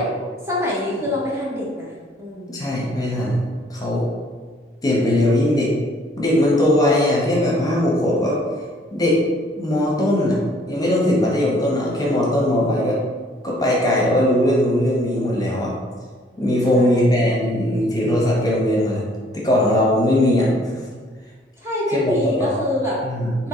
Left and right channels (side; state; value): both; normal; correlation 0.60